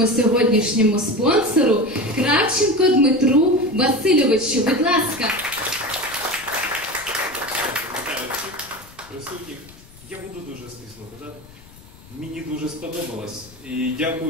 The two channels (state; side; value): noise; left; rumble, 22 dB below the sound